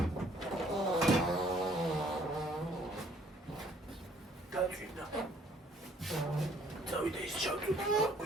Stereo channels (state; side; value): normal; both; correlation 0.61